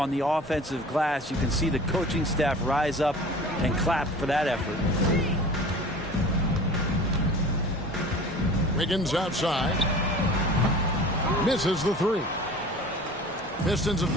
the offensive glass. You can see the coaching staff rise up and clap for that effort. Wiggins outside. Misses the three. Pistons have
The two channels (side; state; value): both; normal; correlation 0.41